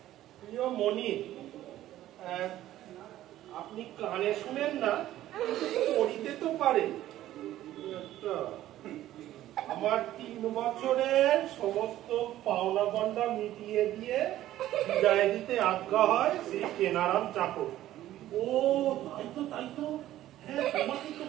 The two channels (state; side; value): quieter; left; 13.8 dB